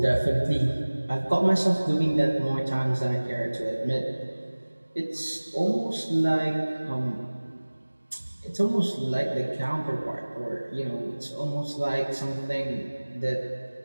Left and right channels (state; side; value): inverted; both; correlation -1.00